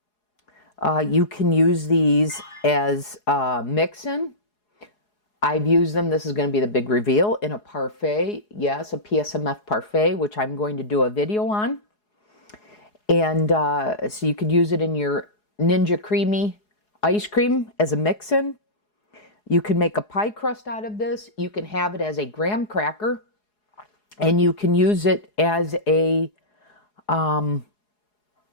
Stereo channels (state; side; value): late; right; 4.8 ms